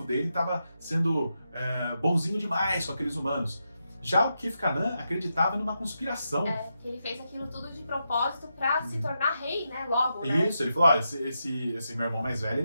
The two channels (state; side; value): inverted; both; correlation -0.86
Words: dele estava sendo bonzinho demais com aqueles humanos. Já o Kith-Kanan acreditava numa conspiração. Que ele fez aquilo tudo de propósito pra se tornar rei, né? Logo, né? Isso, ele falou, olha, esse meu irmão mais